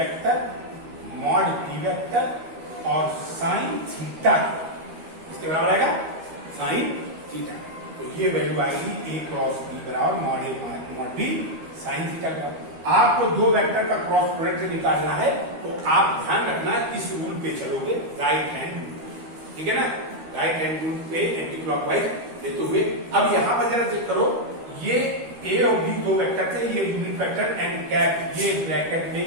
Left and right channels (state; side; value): late; left; 13 ms